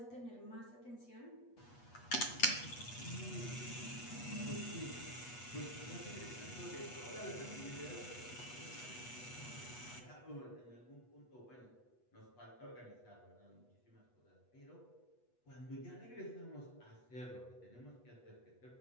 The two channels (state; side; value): late; right; 8.2 ms